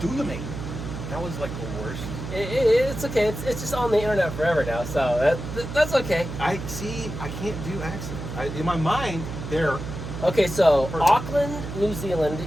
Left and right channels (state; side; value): noise; right; hum, 8 dB below the sound